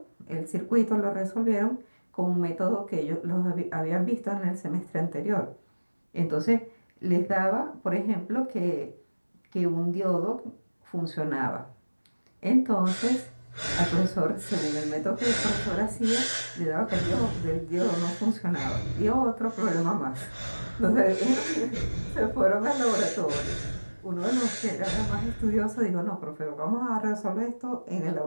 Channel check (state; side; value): inverted; both; correlation -1.00